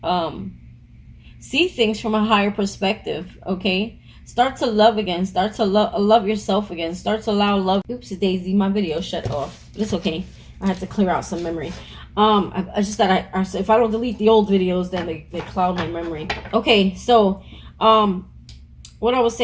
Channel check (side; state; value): both; identical; correlation 1.00